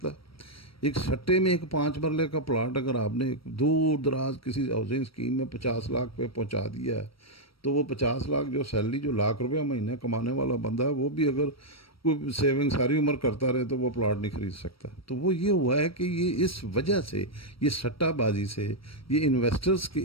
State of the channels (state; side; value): late; right; 0.75 ms